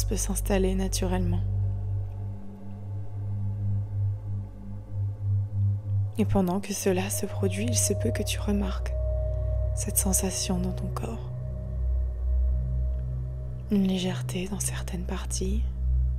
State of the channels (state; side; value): identical; both; correlation 1.00